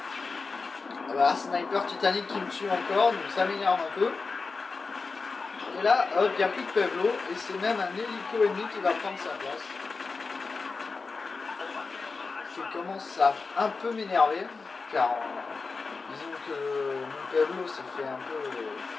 Voilà, sniper Titanic qui me tue encore, donc ça m'énerve un peu. Et là, hop, il n'y a plus de Pablo, et c'est même un hélico ennemi qui va prendre sa place. Je commence à un peu m'énerver, car disons que mon Pablo s'est fait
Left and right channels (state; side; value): quieter; right; 4.3 dB